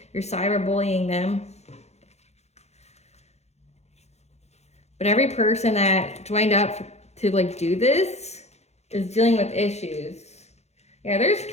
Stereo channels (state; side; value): late; right; 0.32 ms